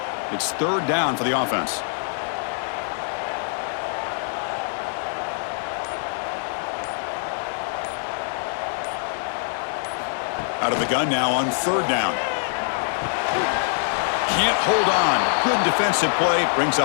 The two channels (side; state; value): right; silent; digital silence